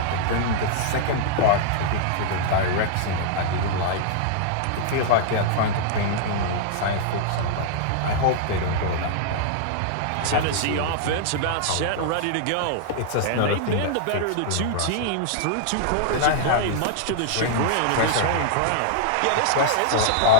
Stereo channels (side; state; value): both; different; correlation -0.01